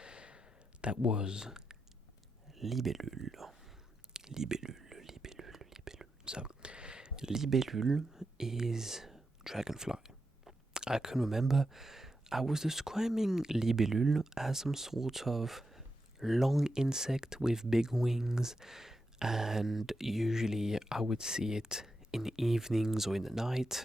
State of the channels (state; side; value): normal; both; correlation 0.87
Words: That was libellule. Libellule. So, libellule is dragonfly. I can remember I was describing libellule as some sort of long insect with big wings, and usually I would see it in the evenings or in the